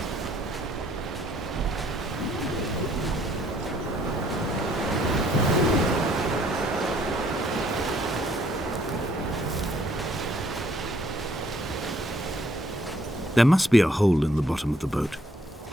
There must be a hole in the bottom of the boat.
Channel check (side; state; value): both; normal; correlation 0.65